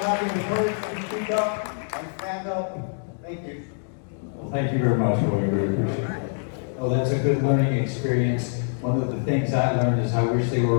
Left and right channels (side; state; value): right; silent; digital silence